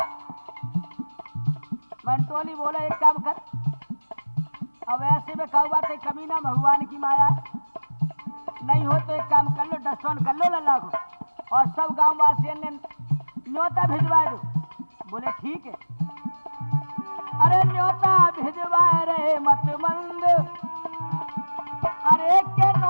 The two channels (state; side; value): inverted; both; correlation -1.00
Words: मंटोली बोले एक काम कर, अब ऐसे में कहू बात है कमी ना भगवान की माया, नहीं हो तो एक काम कर लो, डस्टोन कर लो लल्ला को और सब गांव वासियों ने न्योता भिजवा दो। बोले ठीक है। अरे न्योता भिजवाए रे मत मंद, अरे के